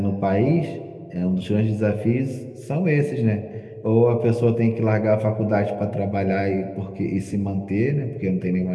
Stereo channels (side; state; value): both; identical; correlation 1.00